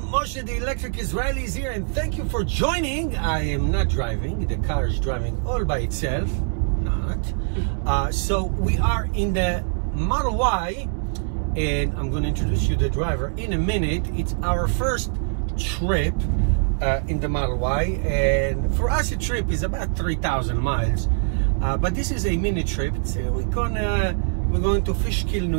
Moshe the Electric Israeli is here, and thank you for joining. I am not driving, the car is driving all by itself. So we are in the Model Y, and I'm going to introduce you to the driver in a minute. It's our first trip in the Model Y, and for us a trip is about 3,000 miles, but this is a mini trip. So we're going to Fishkill, New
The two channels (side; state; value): left; silent; digital silence